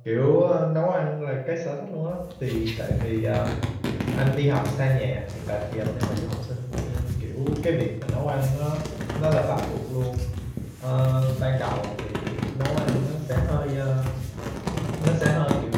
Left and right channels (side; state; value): both; identical; correlation 1.00